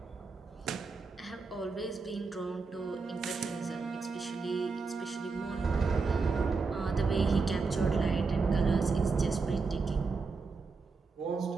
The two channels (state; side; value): quieter; left; 4.4 dB